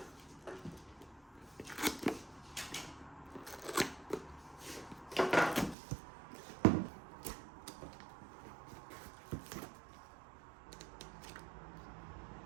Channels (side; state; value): left; drops out; at 5.8 s